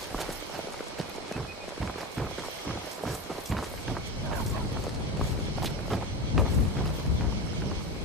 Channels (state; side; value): normal; both; correlation 0.23